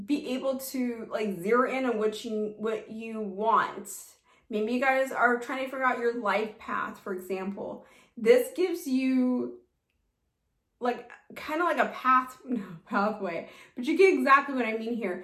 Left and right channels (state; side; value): identical; both; correlation 1.00